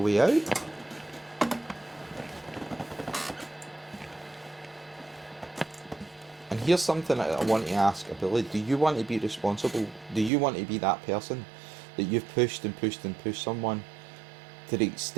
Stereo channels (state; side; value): drops out; left; at 10.3 s